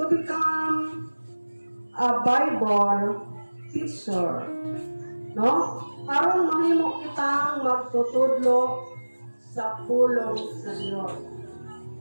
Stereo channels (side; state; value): both; inverted; correlation -1.00